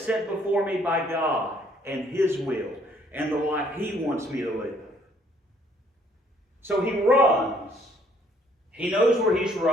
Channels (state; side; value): normal; both; correlation 0.63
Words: set before me by God and His will and the life He wants me to live. So he runs. He knows where he's